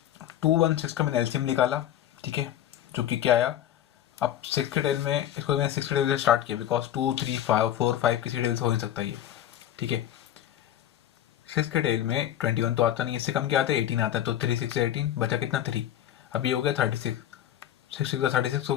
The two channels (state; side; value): quieter; right; 11.6 dB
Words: 216 का मैंने एलसीएम निकाला। ठीक है, जो कि क्या आया, अब 6 के टेबल में इसको मैंने 6 के टेबल से स्टार्ट किया, बिकॉज 2 3 5 4 5 किसी टेबल से हो नहीं सकता ये। ठीक है। 6 के टेल में 21 तो आता नहीं, इससे कम क्या आता है 18 आता है, तो 3 6 18 बचा कितना 3। अब ये हो गया 36, 6 6 36